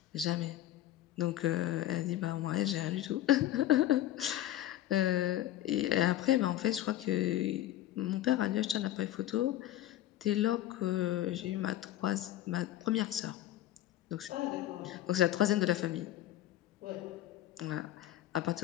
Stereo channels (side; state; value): right; quieter; 13.4 dB